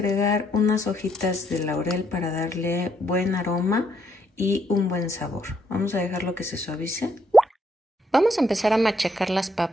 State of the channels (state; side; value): normal; both; correlation 0.73